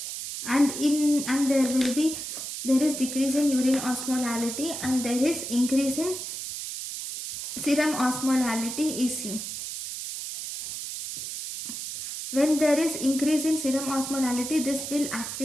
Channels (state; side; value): noise; right; hiss, 7 dB below the sound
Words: and there is decrease in urine osmolality, and there is increase in serum osmolality is seen. When there is increase in serum osmolality, this will